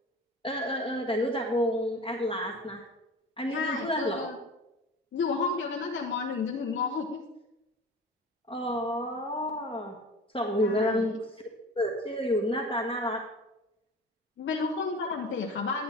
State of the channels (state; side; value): normal; both; correlation 0.37